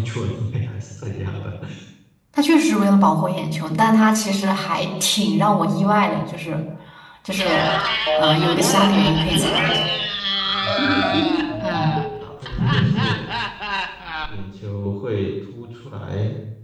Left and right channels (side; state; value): both; identical; correlation 1.00